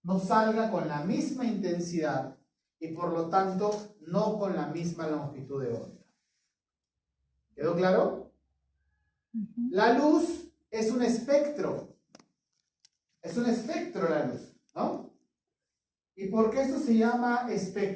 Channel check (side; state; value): both; identical; correlation 1.00